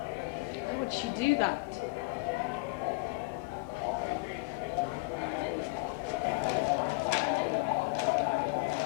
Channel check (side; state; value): right; quieter; 26.2 dB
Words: Why would she do that?